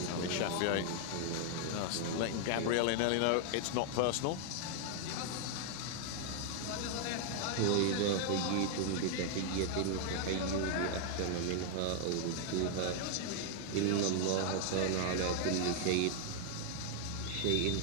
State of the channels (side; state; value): both; different; correlation 0.00